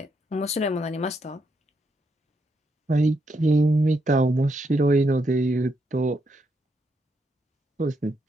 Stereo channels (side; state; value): both; normal; correlation 0.79